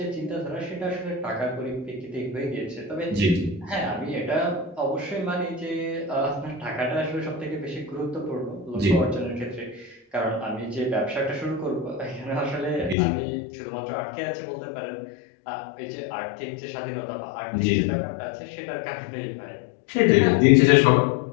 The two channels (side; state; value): right; drops out; at 13.0 s